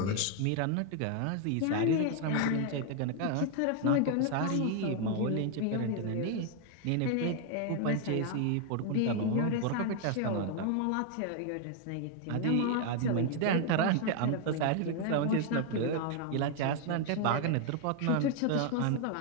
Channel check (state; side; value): different; both; correlation 0.00